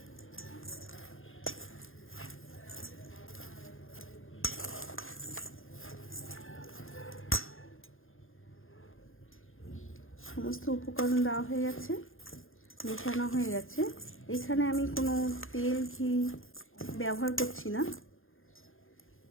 সমস্ত উপকরণ দেওয়া হয়ে গেছে, মেশানো হয়ে গেছে। এখানে আমি কোনো তেল ঘি ব্যবহার করছি না,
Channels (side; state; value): right; late; 0.60 ms